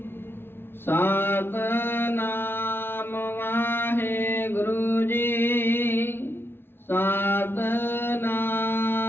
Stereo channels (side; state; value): right; late; 0.11 ms